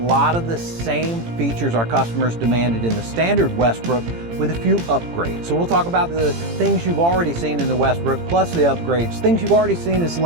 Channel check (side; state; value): left; late; 18 ms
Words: of the same features our customers demanded in the standard Westbrook with a few upgrades. So we'll talk about the things you've already seen in the Westbrook plus the upgrades. Things you've already seen is